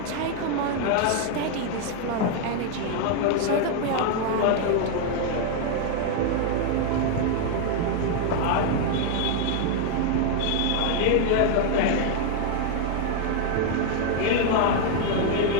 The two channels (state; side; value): different; both; correlation 0.00